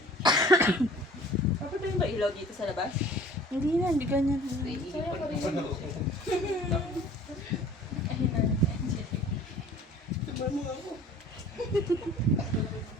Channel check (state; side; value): normal; both; correlation 0.48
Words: Papatayin ba ilaw dito sa labas? Hindi na, hindi ganyan. Saya pa rin. Ayun na, Angel. Diba mo ako?